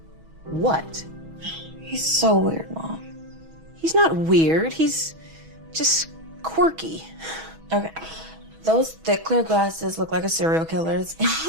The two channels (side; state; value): left; late; 6.2 ms